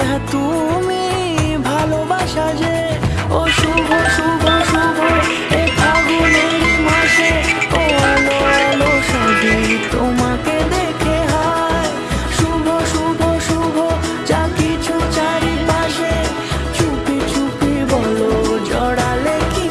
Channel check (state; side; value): identical; both; correlation 1.00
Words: হ্যাঁ তুমি ভালোবাসা যে। ও শুভ শুভ শুভ এ ফাগুনের মাসে, ও আলো আলো সাজে তোমাকে দেখে হায়। শুভ শুভ শুভ যা কিছু চারিপাশে, চুপি চুপি বলো জড়ালে কি